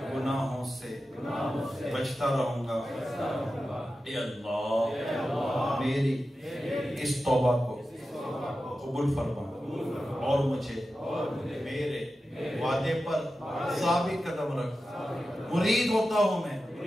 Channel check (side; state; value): both; normal; correlation 0.92